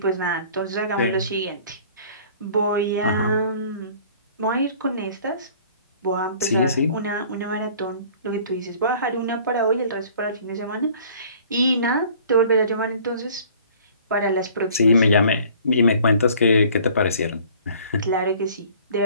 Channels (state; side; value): inverted; both; correlation -0.51